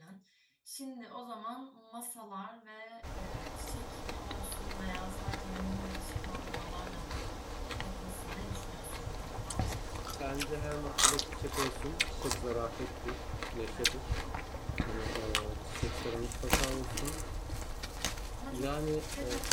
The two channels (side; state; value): both; identical; correlation 1.00